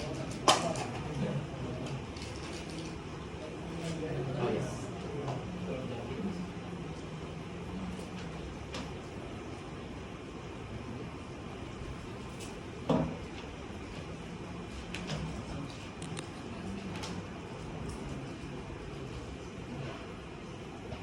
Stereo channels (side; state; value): both; identical; correlation 1.00